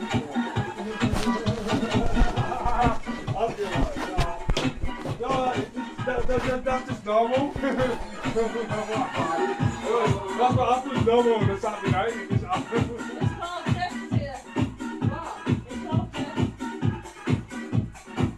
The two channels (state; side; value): identical; both; correlation 1.00